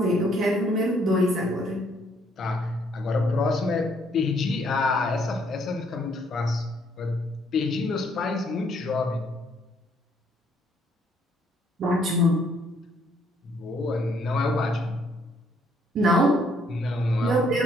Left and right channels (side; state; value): both; normal; correlation 0.68